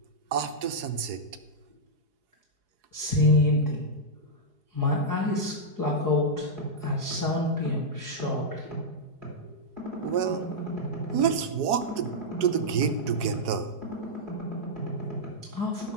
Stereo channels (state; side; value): late; left; 4.8 ms